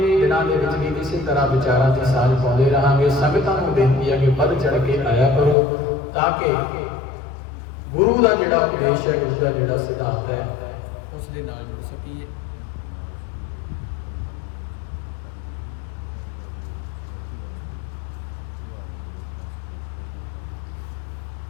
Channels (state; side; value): drops out; right; at 5.6 s